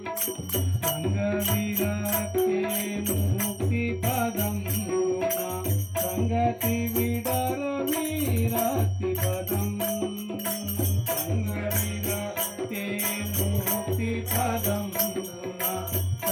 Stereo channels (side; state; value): both; identical; correlation 1.00